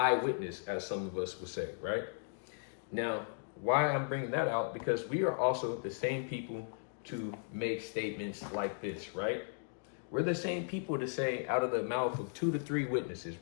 as some of us would say, right? Now, why I'm bringing that out, because we are also the same people to make statements like this, right? We're the same people to say out of the mouth of 2 to 3 witnesses,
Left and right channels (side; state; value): right; silent; digital silence